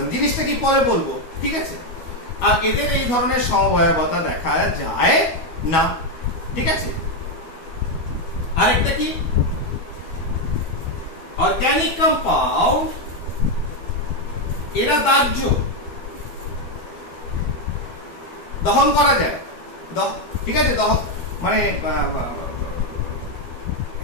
জিনিসটা কি পরে বলবো, ঠিক আছে? আর এদের এই ধরনের সমবায়বতা দেখা যায় না। ঠিক আছে? আরেকটা কি? অর্গানিক কম্পাউন্ড, এরা দাহ্য, দহন করা যায়। ঠিক আছে? দহন মানে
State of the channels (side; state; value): right; late; 12 ms